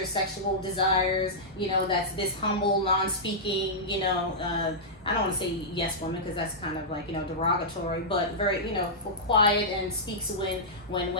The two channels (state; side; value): normal; both; correlation -0.12